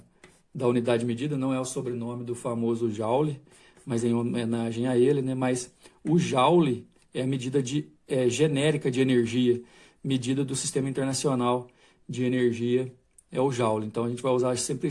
unidade de medida, não é o sobrenome do famoso Joule, mas em homenagem a ele, né? Mas o Joule é a medida genérica de energia, medida do Sistema Internacional de Energia, é o Joule. Então a gente vai usar sempre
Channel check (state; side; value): identical; both; correlation 1.00